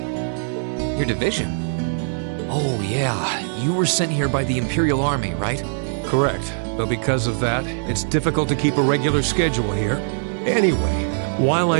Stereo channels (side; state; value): left; silent; 65 dB below the other